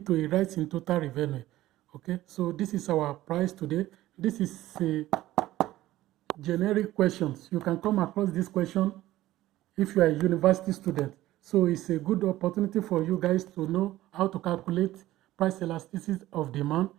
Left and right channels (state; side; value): quieter; left; 15.6 dB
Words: to a rise in total revenue. Okay, so this is our price today. This is a generic questions. You can come across this question if you are a university student. So it's a good opportunity for you guys to know how to calculate price elasticity of demand